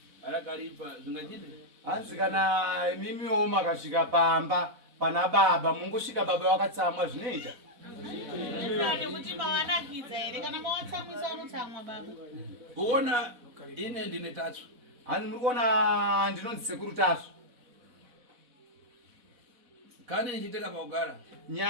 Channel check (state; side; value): late; left; 4.1 ms